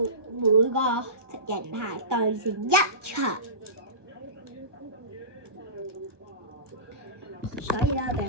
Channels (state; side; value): late; left; 1.2 ms